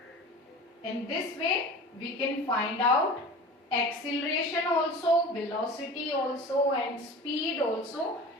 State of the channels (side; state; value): both; normal; correlation 0.37